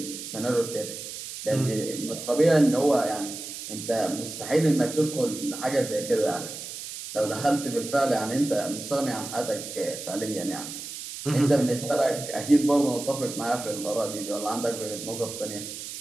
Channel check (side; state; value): right; noise; hiss, 9 dB below the sound